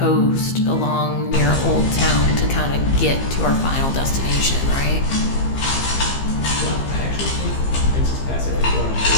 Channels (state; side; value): late; right; 15 ms